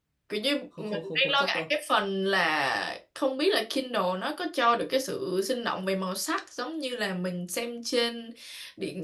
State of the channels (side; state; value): both; identical; correlation 1.00